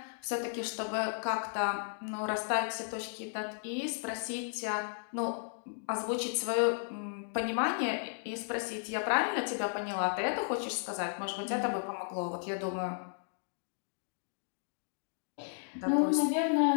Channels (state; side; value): silent; right; digital silence